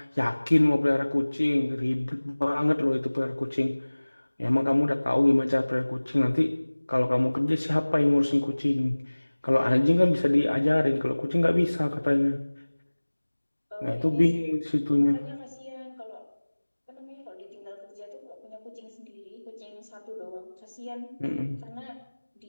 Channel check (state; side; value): inverted; both; correlation -1.00